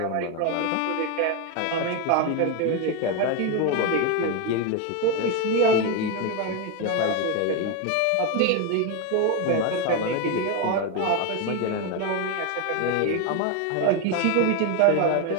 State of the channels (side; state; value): both; different; correlation 0.02